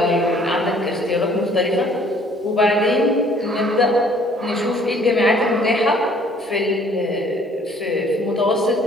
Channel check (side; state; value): both; normal; correlation 0.58